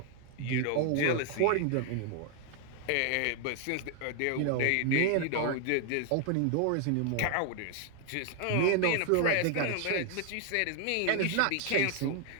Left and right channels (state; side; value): different; both; correlation 0.00